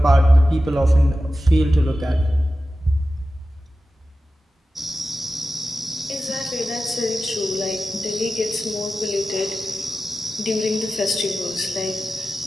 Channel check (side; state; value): both; normal; correlation 0.94